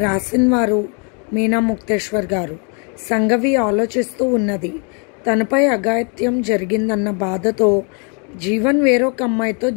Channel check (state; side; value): quieter; right; 37.1 dB